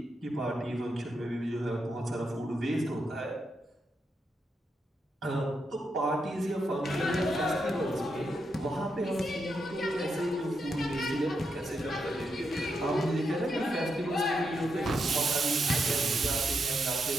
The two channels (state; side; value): normal; both; correlation 0.83